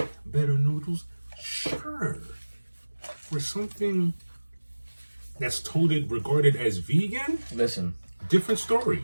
better noodles? Sure. For something that's regarded as vegan, Listen, different story.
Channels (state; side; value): inverted; both; correlation -1.00